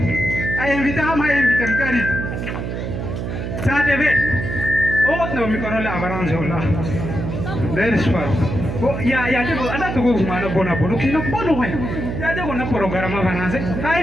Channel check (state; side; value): noise; right; hum, 4 dB below the sound